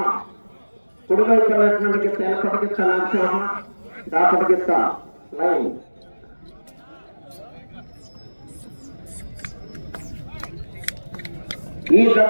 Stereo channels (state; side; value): inverted; both; correlation -1.00